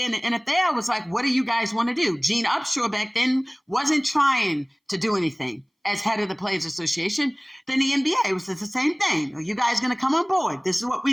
the NFL, was like, what do you guys want to do? Gene Upshaw back then wasn't trying to do anything as head of the Players Association. Then the NBA was the same thing. Are you guys going to come on board? This is what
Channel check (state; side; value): identical; both; correlation 1.00